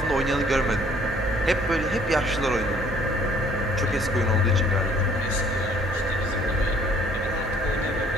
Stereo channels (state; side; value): normal; both; correlation 0.59